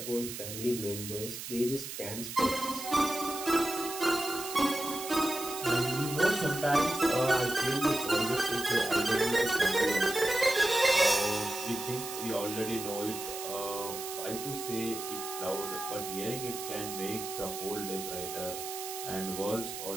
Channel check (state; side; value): noise; right; hiss, 8 dB below the sound